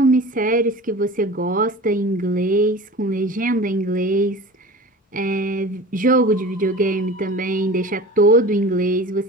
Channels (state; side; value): normal; both; correlation 0.36